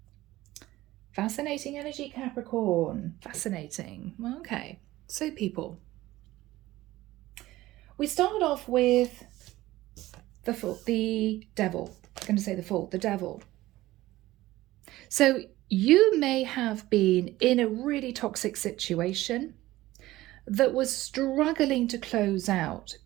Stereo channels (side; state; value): left; quieter; 16.9 dB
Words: Fascinating energy, Capricorn. Fascinating. Okay, so people, we start off with the Devil. I'm going to say the Fool, the Devil. So you may have been in a really toxic situation that was struggling to close out